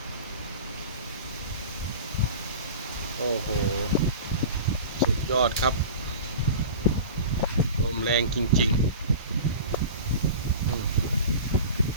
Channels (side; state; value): both; inverted; correlation -0.35